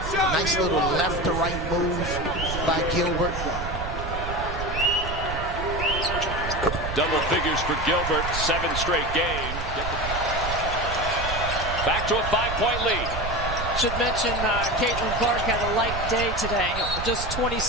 Nice little left to right move by Gilbert. Double figures for Gilbert, 7 straight game. Back to a 5-point lead. Should mention Caitlin Clark had a light day today. Just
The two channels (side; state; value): right; noise; rumble, 6 dB below the sound